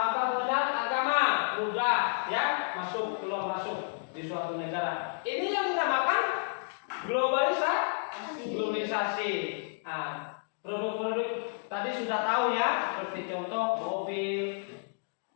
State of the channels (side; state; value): right; silent; digital silence